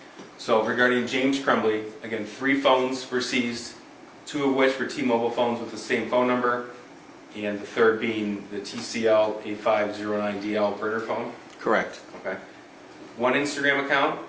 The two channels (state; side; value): identical; both; correlation 1.00